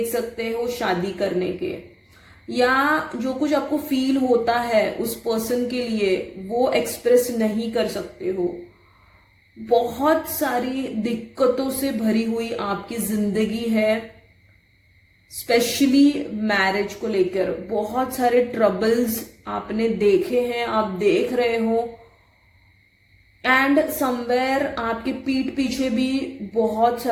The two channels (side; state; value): both; identical; correlation 1.00